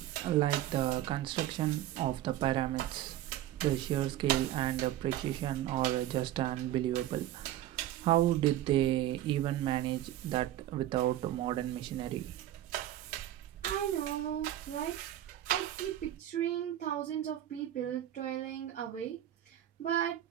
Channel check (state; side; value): quieter; left; 13.0 dB